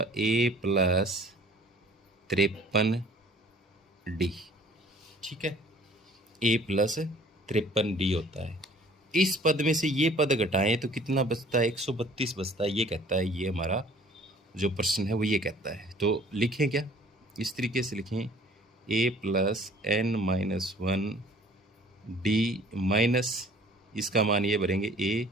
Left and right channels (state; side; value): normal; both; correlation 0.53